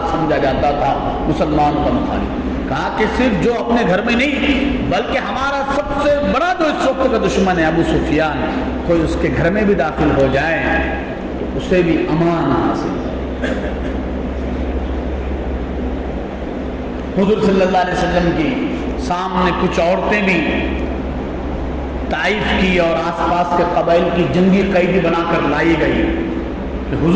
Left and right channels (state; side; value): identical; both; correlation 1.00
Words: سمجھا جاتا تھا، مسلمانوں کا مخالف، کہا کہ صرف جو اپنے گھر میں نہیں بلکہ ہمارا سب سے بڑا جو اس وقت کا دشمن ہے ابو سفیان، کوئی اس کے گھر میں بھی داخل ہو جائے تو اسے بھی امان حاصل ہے۔ حضور صلی اللہ علیہ وسلم کی سامنے کچھ عورتیں بھی طائف کی اور آس پاس کے قبائل کی جنگی قیدی بنا کر لائی گئی کہ